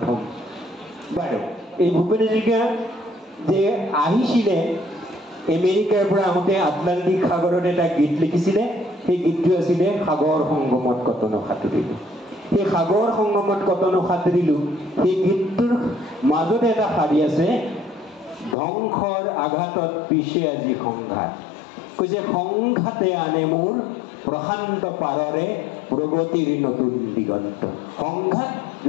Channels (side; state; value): right; drops out; at 18.6 s